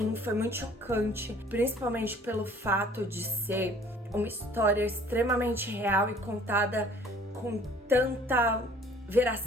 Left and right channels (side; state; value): both; normal; correlation 0.53